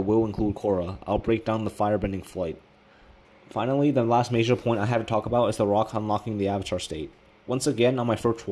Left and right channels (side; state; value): both; identical; correlation 1.00